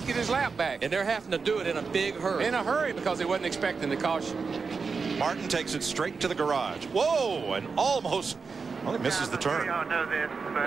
get his lap back. And they're having to do it in a big hurry. In a hurry, because they wasn't expecting the caution. Martin takes it straight to the garage. Whoa, and almost, well, he misses the turn.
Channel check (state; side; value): quieter; left; 5.0 dB